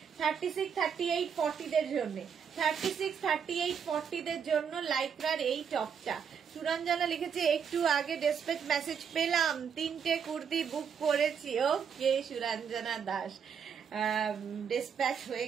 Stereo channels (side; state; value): left; quieter; 7.1 dB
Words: 36, 38, 40দের জন্য, 36, 38, 40দের জন্য লাইকরার এই টপটা। সুরঞ্জনা লিখেছে একটু আগে ডেসপ্যাচ মেসেজ পেলাম, 3টে কুর্তি বুক করেছি। ওকে সুরঞ্জনা দাস, ডেসপ্যাচ হয়ে